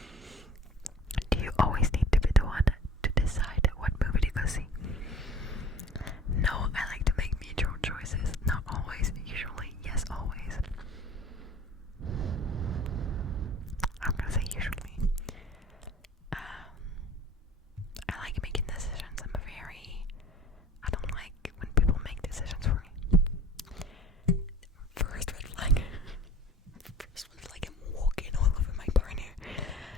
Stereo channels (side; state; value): both; normal; correlation 0.46